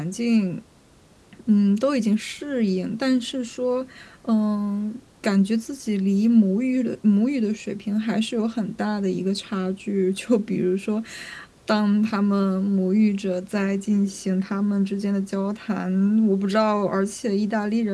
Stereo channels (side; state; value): both; identical; correlation 1.00